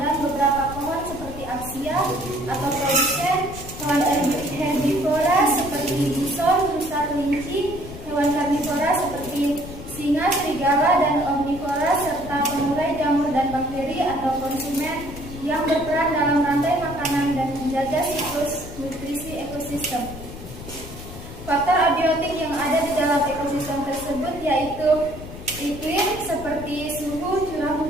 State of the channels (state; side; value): noise; left; rumble, 12 dB below the sound